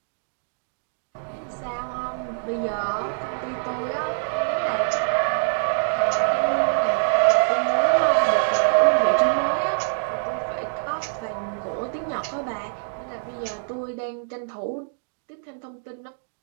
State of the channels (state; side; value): silent; left; digital silence